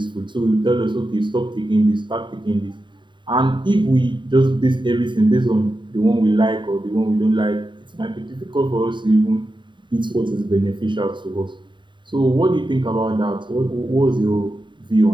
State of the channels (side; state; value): left; late; 0.23 ms